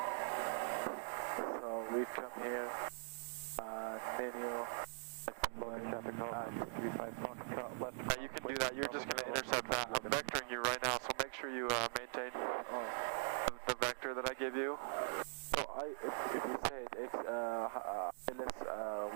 So we come here, menu, traffic call, 35 Foxtrot left. You can do that, you're just going to intercept that. I'm vectoring you right now, so make sure you maintain the vector that I give you. So if you say it's ILS 17,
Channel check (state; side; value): silent; left; digital silence